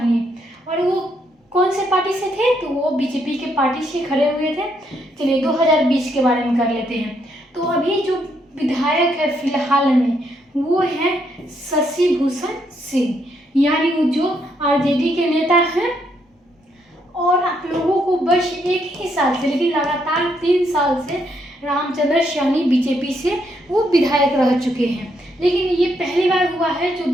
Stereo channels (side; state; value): both; normal; correlation 0.75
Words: और वो कौन से पार्टी से थे, तो वो बीजेपी के पार्टी से खड़े हुए थे। चलिए, 2020 के बारे में कर लेते हैं। तो अभी जो विधायक है फिलहाल में वो है शशि भूषण सिंह, यानी वो जो आरजेडी के नेता हैं। और आप लोगों को बस एक ही साल से, लेकिन लगातार 3 साल से रामचंद्र सैनी बीजेपी से वो विधायक रह चुके हैं, लेकिन ये पहली बार हुआ है जो